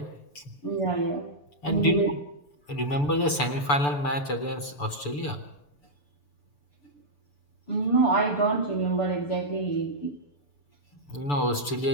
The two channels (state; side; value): late; right; 6.9 ms